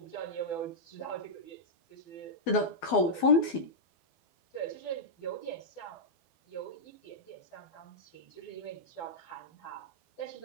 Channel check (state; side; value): late; right; 12 ms